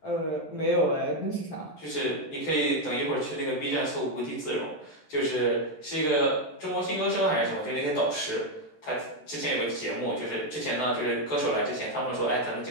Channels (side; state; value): right; late; 13 ms